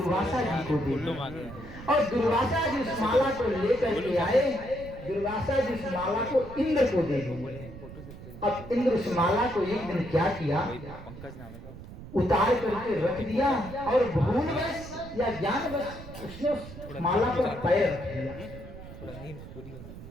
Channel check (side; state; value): right; noise; rumble, 14 dB below the sound